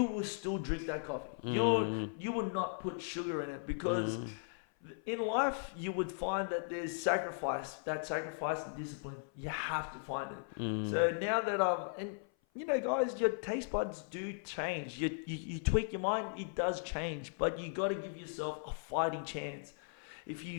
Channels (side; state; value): right; silent; 53 dB below the other